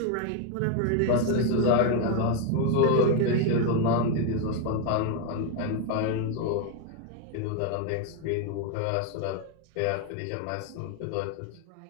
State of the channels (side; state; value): both; different; correlation 0.01